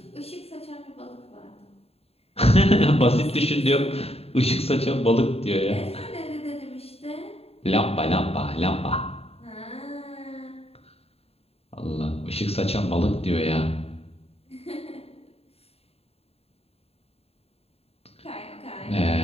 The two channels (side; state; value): right; late; 0.29 ms